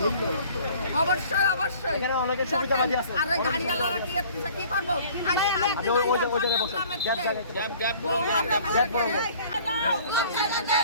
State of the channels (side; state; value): both; inverted; correlation -0.51